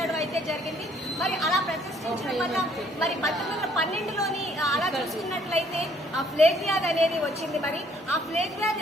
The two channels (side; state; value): both; normal; correlation 0.63